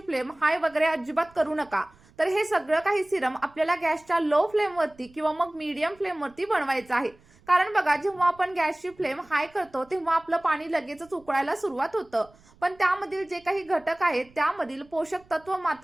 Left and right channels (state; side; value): noise; right; rumble, 28 dB below the sound